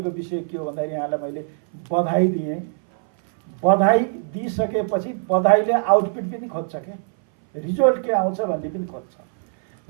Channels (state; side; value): silent; left; 60 dB below the other